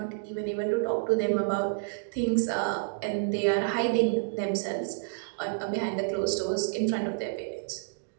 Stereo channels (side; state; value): left; silent; digital silence